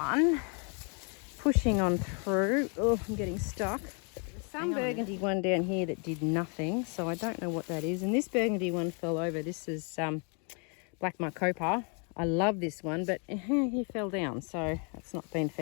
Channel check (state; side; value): quieter; right; 37.9 dB